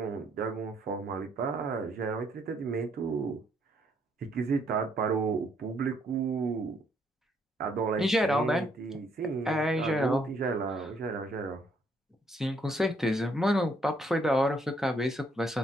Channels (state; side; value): normal; both; correlation 0.69